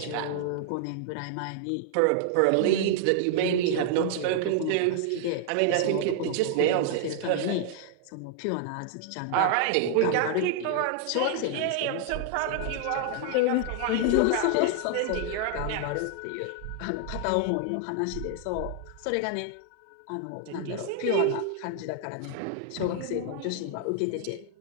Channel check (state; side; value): different; both; correlation 0.00